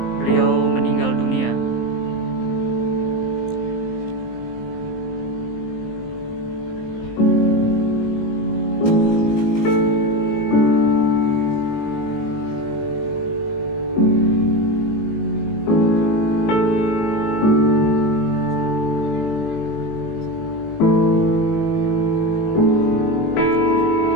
beliau meninggal dunia.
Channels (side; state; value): right; late; 19 ms